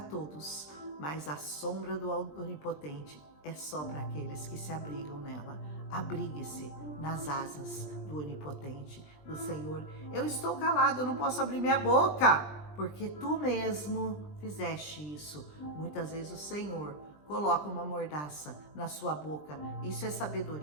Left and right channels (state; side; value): late; right; 20 ms